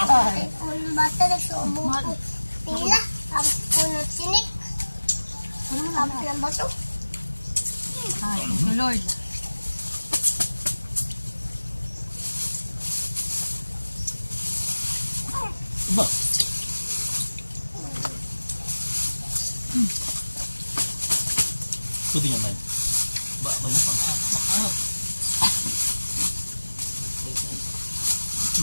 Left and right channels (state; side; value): inverted; both; correlation -1.00